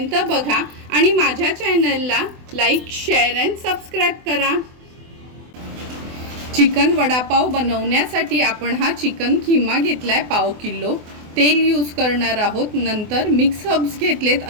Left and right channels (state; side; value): late; left; 24 ms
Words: बघा आणि माझ्या चॅनलला लाईक, शेअर अँड सबस्क्राईब करा। चिकन वडापाव बनवण्यासाठी आपण हा चिकन किमा घेतलाय पाव किलो। तेल यूज करणार आहोत। नंतर मिक्स हर्ब्स घेतलेत